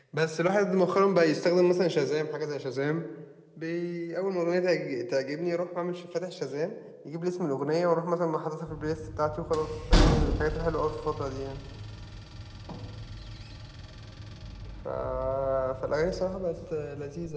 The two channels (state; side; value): identical; both; correlation 1.00